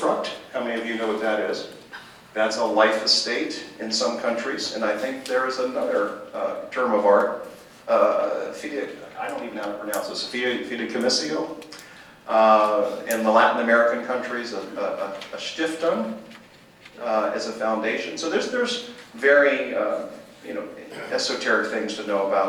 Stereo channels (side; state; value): both; identical; correlation 1.00